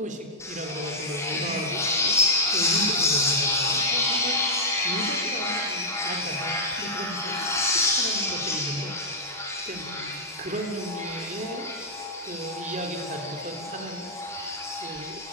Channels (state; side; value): normal; both; correlation -0.09